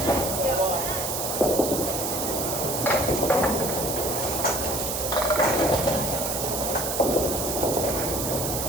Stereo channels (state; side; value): noise; right; hiss, 2 dB below the sound